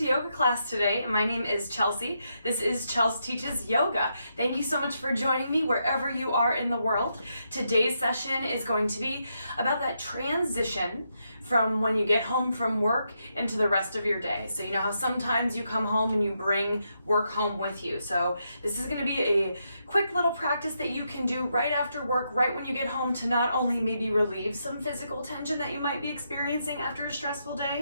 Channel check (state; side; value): inverted; both; correlation -0.81